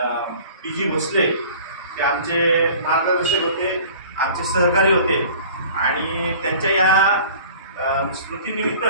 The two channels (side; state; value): both; inverted; correlation -0.46